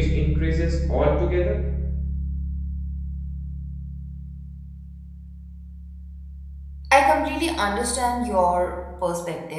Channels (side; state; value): both; identical; correlation 1.00